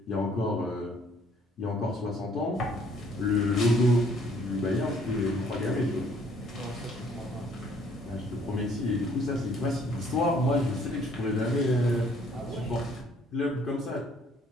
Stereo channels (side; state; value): both; normal; correlation 0.61